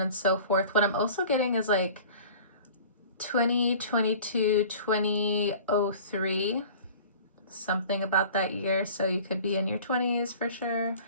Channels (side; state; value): both; inverted; correlation -0.44